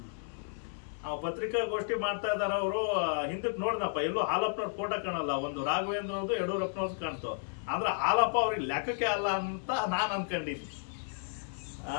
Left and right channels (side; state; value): right; silent; 56 dB below the other